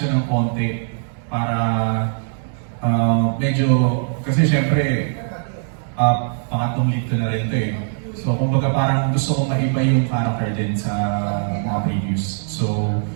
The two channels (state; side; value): silent; left; digital silence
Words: ng konti para medyo, kasi syempre, pangatlong lead ko na rin ito eh. So, kumbaga parang gusto kong maiba yung character din sa mga previews. So,